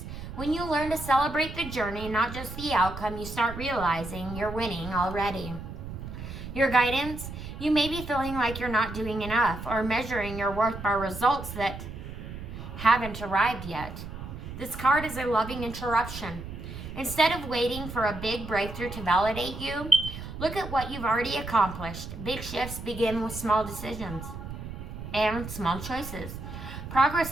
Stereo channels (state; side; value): noise; right; rumble, 9 dB below the sound